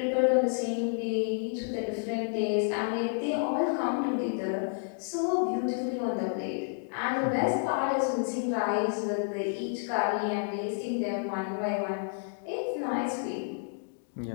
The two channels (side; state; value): right; silent; digital silence